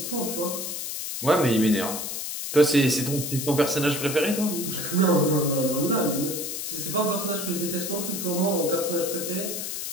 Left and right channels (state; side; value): noise; left; hiss, 5 dB below the sound